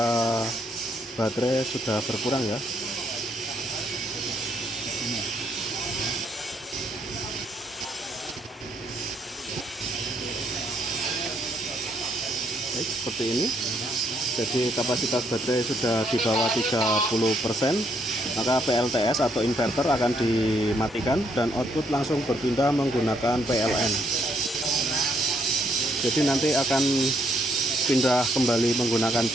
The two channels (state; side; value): normal; both; correlation 0.72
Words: baterai sudah berkurang ya. Baik, seperti ini. Jadi kapasitas baterai sudah di bawah 30%, maka PLTS atau inverter akan dimatikan dan output langsung berpindah menggunakan PLN. Jadi nanti akan pindah kembali menggunakan